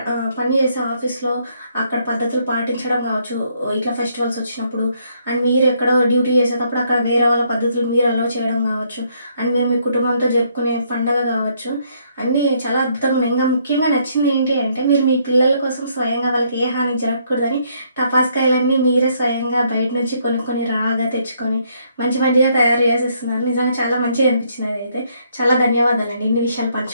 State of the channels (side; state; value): both; inverted; correlation -0.70